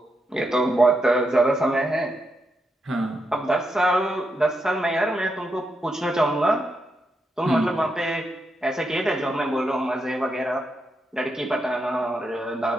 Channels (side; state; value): both; normal; correlation 0.83